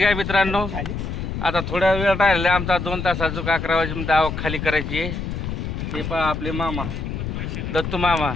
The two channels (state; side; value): noise; left; rumble, 5 dB below the sound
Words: मित्रांनो. आता थोड्या वेळ राहिला आमचा 2 तासाचं 11 वाजेपर्यंत आवक खाली करायची आहे. हे पहा आपले मामा दत्तू मामा,